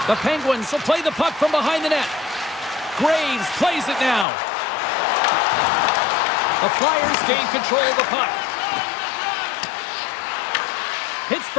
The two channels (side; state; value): right; drops out; at 4.2 s